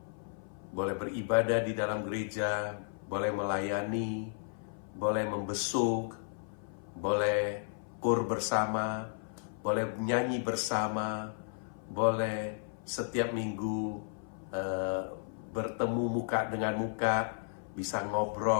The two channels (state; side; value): silent; right; 55 dB below the other